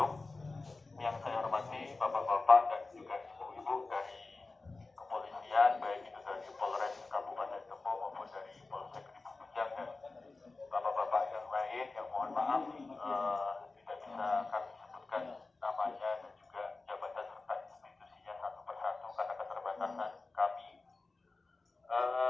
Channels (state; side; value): quieter; right; 3.6 dB